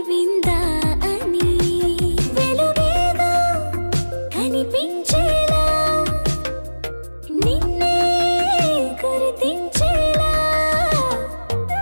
విందా అని వెలుగేదో కనిపించేలా నిన్నే గుర్తించేలా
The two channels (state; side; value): inverted; both; correlation -1.00